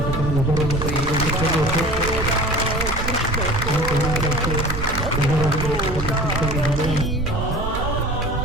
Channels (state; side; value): noise; right; rumble, 5 dB below the sound